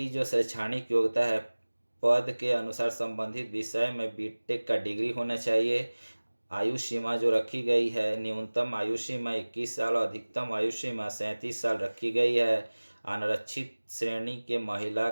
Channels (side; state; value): both; inverted; correlation -1.00